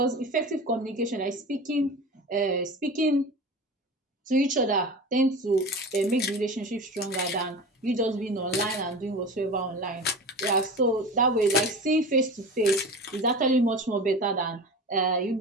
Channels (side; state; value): both; normal; correlation 0.32